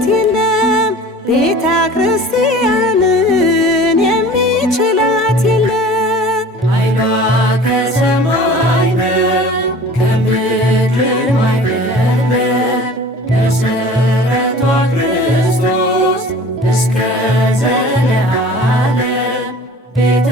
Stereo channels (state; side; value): normal; both; correlation 0.42